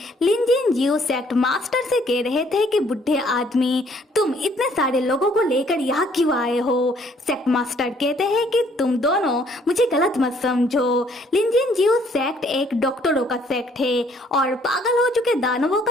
लिंजिन जियो सेक्ट मास्टर से कह रहे थे कि बुढ़े आदमी, तुम इतने सारे लोगों को लेकर यहाँ क्यों आए हो। सेक्ट मास्टर कहते हैं कि तुम दोनों मुझे गलत मत समझो। लिंजिन जियो सेक्ट एक डॉक्टरों का सेक्ट है और पागल हो चुके दानवों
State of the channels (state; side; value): normal; both; correlation 0.63